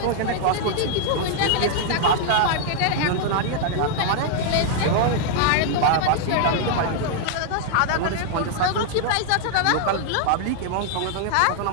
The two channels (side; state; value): both; different; correlation 0.00